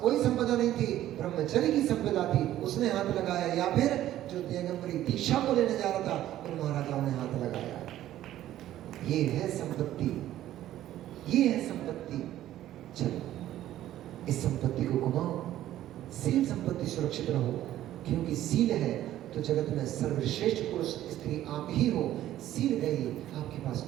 कोई संपदा नहीं थी, ब्रह्मचर्य की संपदा थी, उसने हाथ लगाया, या फिर जो दिगंबरी दीक्षा को लेने जा रहा था उन महाराजाओं ने हाथ लगाया। ये है संपत्ति, ये है संपत्ति। चलो इस संपत्ति को घुमाओ, सील संपत्ति सुरक्षित रहो, क्योंकि सील है तो जगत में सर्वश्रेष्ठ पुरुष स्त्री आप ही हो। सील गई, आपके पास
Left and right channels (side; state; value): left; quieter; 13.2 dB